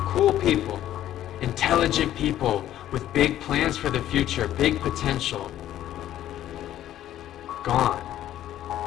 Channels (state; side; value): quieter; right; 12.3 dB